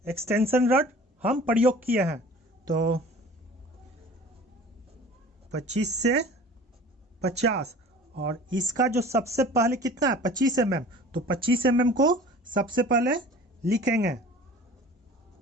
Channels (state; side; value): normal; both; correlation 0.44